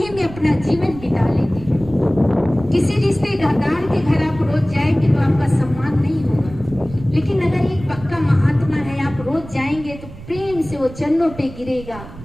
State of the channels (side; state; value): right; noise; rumble, 16 dB below the sound